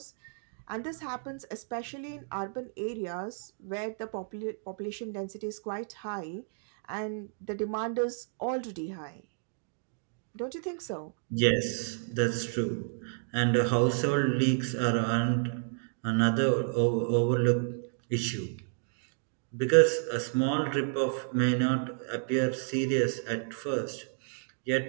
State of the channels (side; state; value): left; silent; digital silence